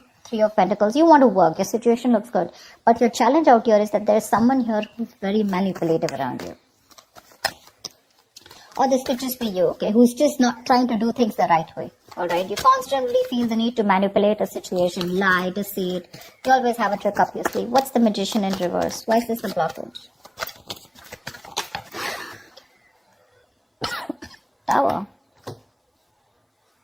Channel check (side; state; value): both; identical; correlation 1.00